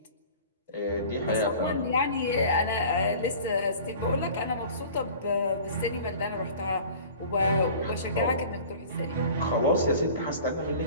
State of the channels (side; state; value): both; inverted; correlation -0.43